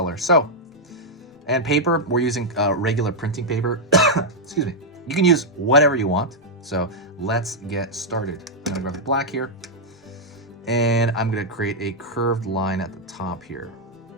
So, and paper, we're using regular printing paper. Excuse me. You can use whatever you want. So let's get started. I'm gonna grab the black here and I'm gonna create a curved line at the top here.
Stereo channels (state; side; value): normal; both; correlation -0.03